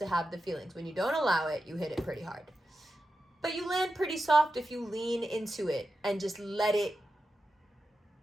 have the feelings. When you don't allow it, you hit it pretty hard. But you land pretty soft if you lean into it and just let it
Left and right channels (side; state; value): both; normal; correlation 0.90